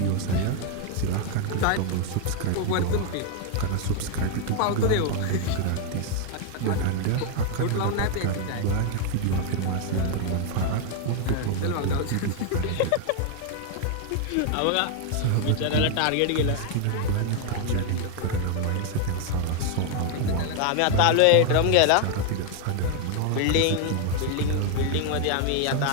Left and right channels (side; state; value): both; different; correlation 0.00